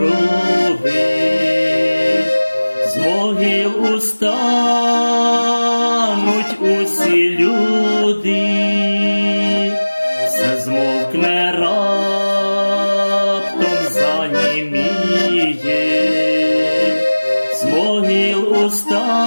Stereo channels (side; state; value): both; inverted; correlation -1.00